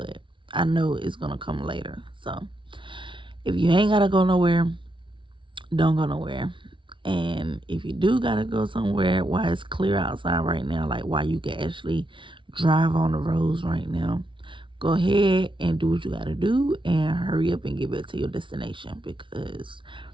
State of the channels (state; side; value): late; left; 0.24 ms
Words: I know it's gonna come later. So if you ain't gotta go nowhere, don't go nowhere. And if you do gotta go somewhere while it's clear outside right now, like while you can actually drive on the roads right now, go ahead and do what you gotta do and hurry up and get back to your destination, because